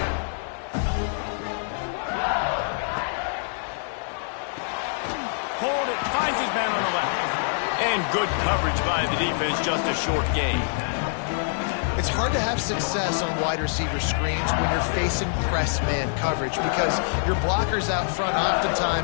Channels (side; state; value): right; silent; digital silence